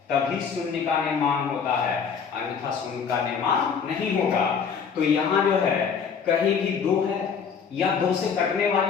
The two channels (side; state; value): right; quieter; 6.5 dB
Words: तभी शून्य का निर्माण होता है, अन्यथा शून्य का निर्माण नहीं होगा। तो यहाँ जो है कहीं भी 2 है या 2 से कटने